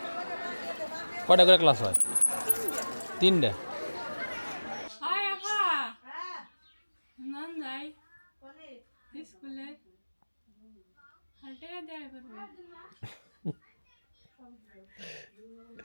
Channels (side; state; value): both; inverted; correlation -1.00